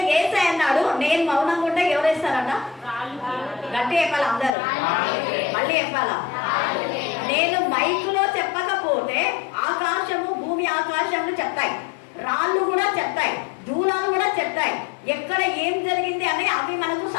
యేసయ్య అన్నాడు, నేను మౌనంగా ఉంటే ఎవరు వేస్తారట? గట్టి చెప్పాలా అందరూ? మళ్ళీ చెప్పాలా? నేను మైకులో చెప్పకపోతే ఆకాశము భూమి ఆకాశములు చెప్తాయి, రాళ్ళు కూడా చెప్తాయి, దూలాలు కూడా చెప్తాయి. ఎక్కడ ఏం జరిగింది అని అవి మనకు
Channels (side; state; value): right; drops out; at 4.5 s